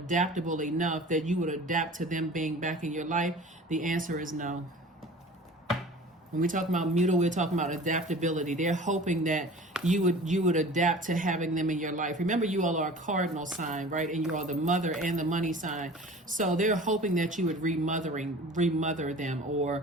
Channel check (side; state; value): both; normal; correlation 0.42